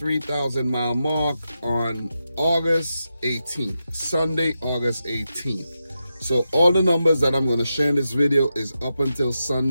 mile mark on August 18th, Sunday, August 18th. So all the numbers that I'm going to share in this video is up until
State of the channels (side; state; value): both; inverted; correlation -0.88